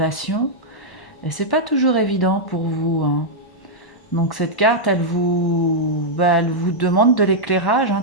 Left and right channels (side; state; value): right; late; 1.1 ms